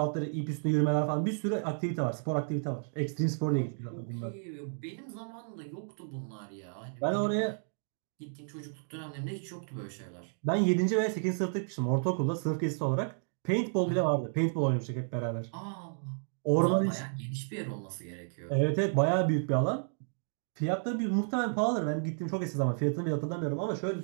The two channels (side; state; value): left; silent; digital silence